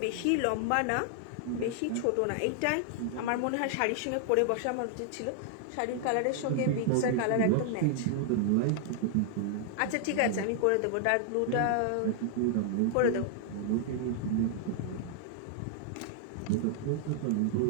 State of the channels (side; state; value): both; different; correlation 0.00